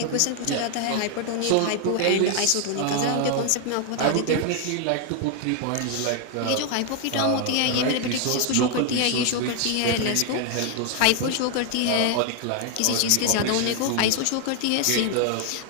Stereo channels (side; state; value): both; different; correlation 0.00